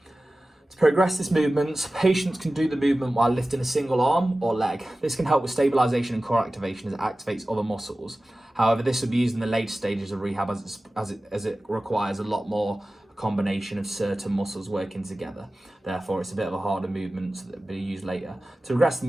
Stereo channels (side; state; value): both; normal; correlation 0.96